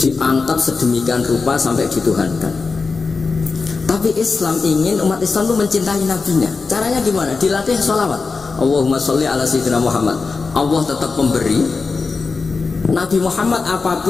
sedemikian rupa sampai dituhankan. Tapi Islam ingin umat Islam itu mencintai nabinya. Caranya gimana? Dilatih sholawat Allahumma sholli ala sayyidina Muhammad. Allah tetap memberi. Nabi Muhammad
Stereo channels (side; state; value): right; quieter; 4.4 dB